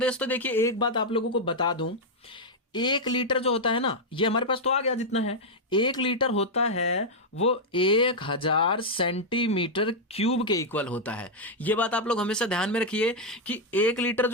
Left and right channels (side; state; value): both; normal; correlation -0.02